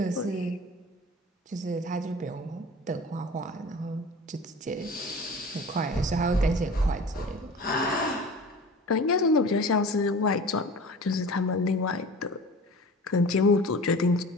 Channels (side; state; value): both; normal; correlation 0.39